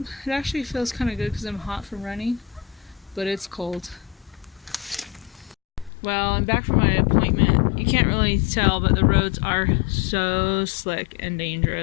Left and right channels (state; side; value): drops out; right; at 5.9 s